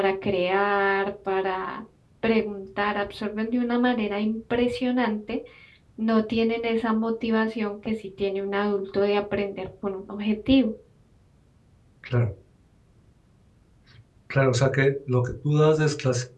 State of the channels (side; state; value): both; identical; correlation 1.00